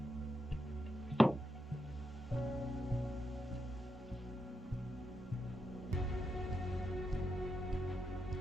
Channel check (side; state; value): both; normal; correlation 0.84